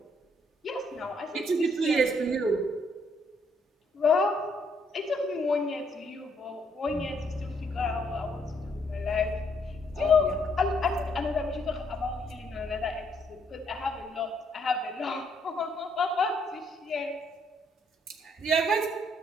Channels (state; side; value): normal; both; correlation 0.70